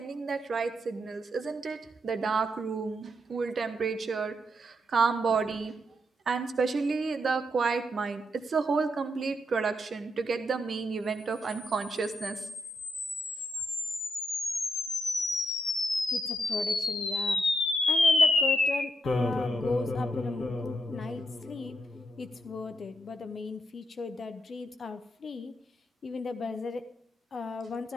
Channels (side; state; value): both; normal; correlation 0.81